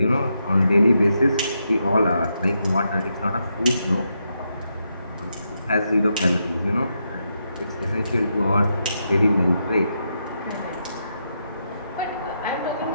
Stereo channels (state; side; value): inverted; both; correlation -0.83